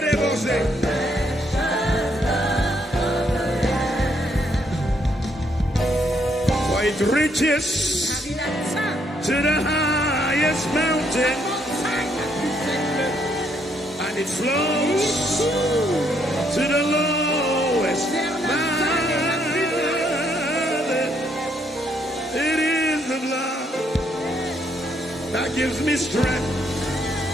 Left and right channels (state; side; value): normal; both; correlation 0.72